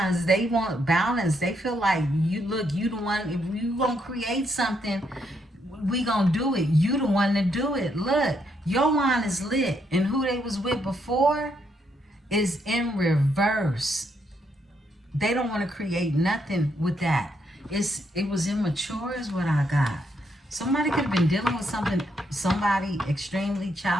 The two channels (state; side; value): normal; both; correlation 0.76